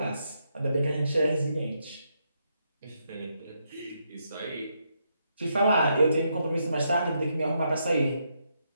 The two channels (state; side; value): inverted; both; correlation -0.79